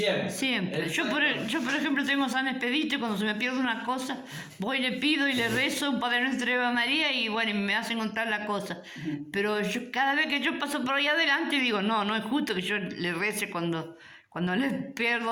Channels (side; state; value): both; identical; correlation 1.00